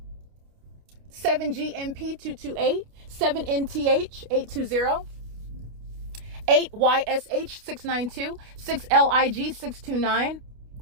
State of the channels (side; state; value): left; late; 29 ms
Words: 7GMP228, 7NTH820, 8YSH692, 6LIG629.